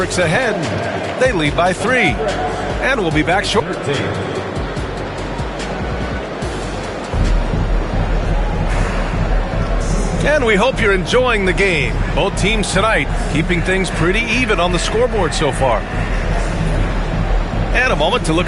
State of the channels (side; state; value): both; identical; correlation 1.00